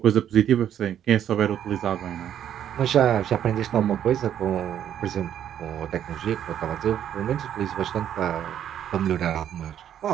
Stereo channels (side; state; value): left; quieter; 10.1 dB